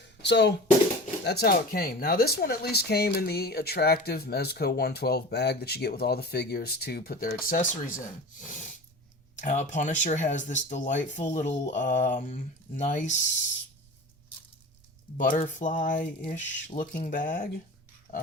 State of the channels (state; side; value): noise; right; rumble, 30 dB below the sound